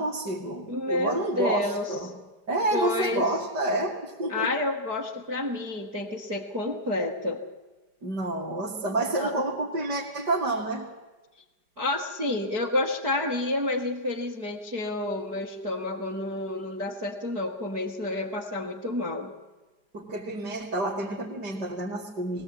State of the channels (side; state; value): left; late; 4.9 ms